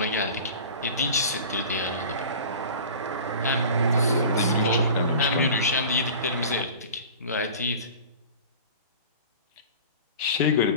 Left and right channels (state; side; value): inverted; both; correlation -0.38